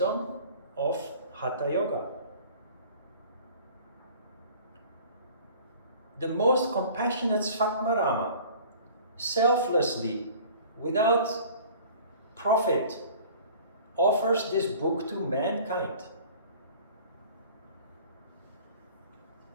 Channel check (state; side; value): inverted; both; correlation -0.47